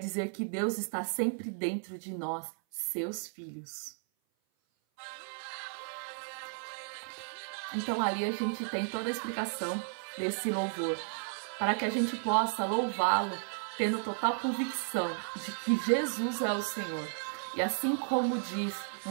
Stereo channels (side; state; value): left; silent; 55 dB below the other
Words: que Deus está sempre dentro de nós, seus filhos. Então ali a gente tem toda a explicação desse louvor, para que a gente possa louvá-lo tendo total convicção de que Jesus é o Senhor. E assim como diz